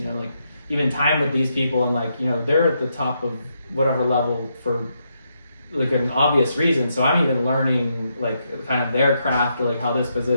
know, like even time with these people, and like, you know, they're at the top of whatever level for like an obvious reason. So I'm even learning like kind of their craft, or like how this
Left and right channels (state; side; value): inverted; both; correlation -0.80